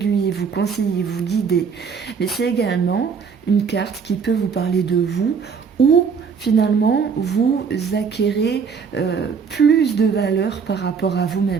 vous conseiller, vous guider. Mais c'est également une carte qui peut vous parler de vous ou finalement vous acquérez plus de valeur par rapport à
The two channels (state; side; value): quieter; left; 6.0 dB